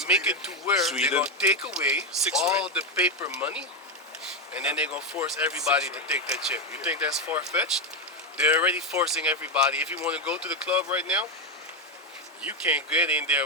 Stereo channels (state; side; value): normal; both; correlation 0.07